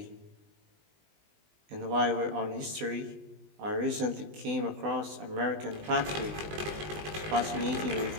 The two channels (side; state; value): left; late; 20 ms